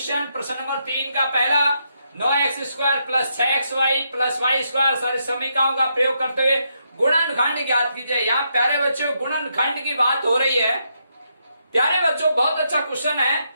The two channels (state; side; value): inverted; both; correlation -0.79